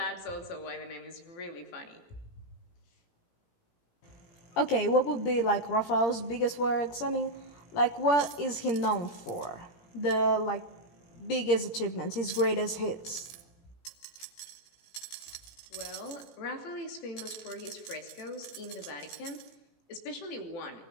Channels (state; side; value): late; right; 17 ms